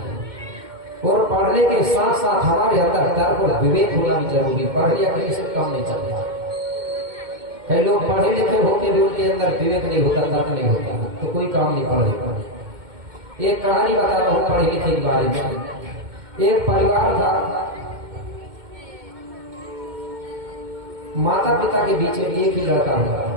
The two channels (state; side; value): late; left; 2.1 ms